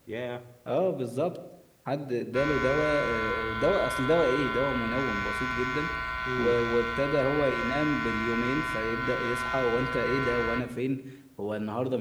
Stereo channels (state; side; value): identical; both; correlation 1.00